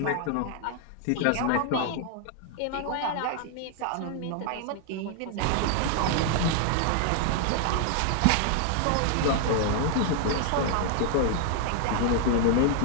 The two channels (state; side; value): different; both; correlation 0.00